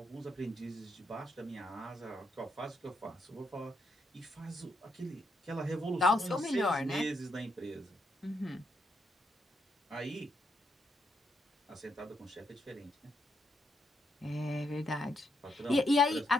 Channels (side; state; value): both; normal; correlation 0.78